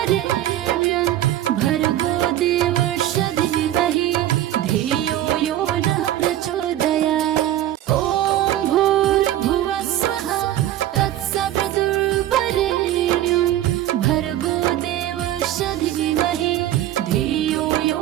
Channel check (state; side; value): quieter; left; 13.1 dB